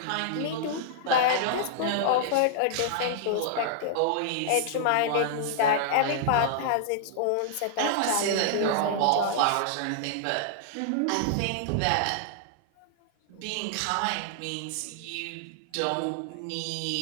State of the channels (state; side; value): different; both; correlation -0.01